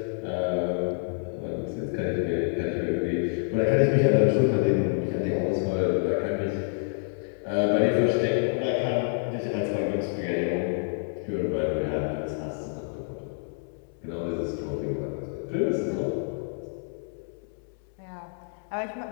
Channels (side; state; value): right; silent; 60 dB below the other